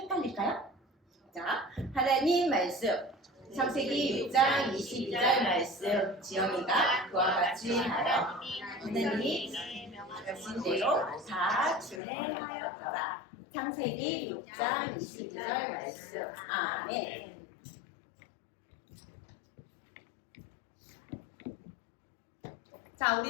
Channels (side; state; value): right; drops out; at 12.0 s